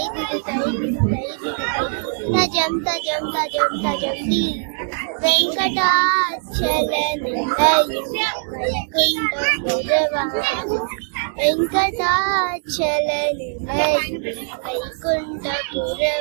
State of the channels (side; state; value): left; silent; digital silence